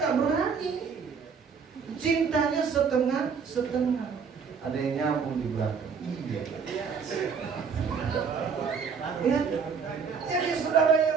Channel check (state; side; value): quieter; left; 6.0 dB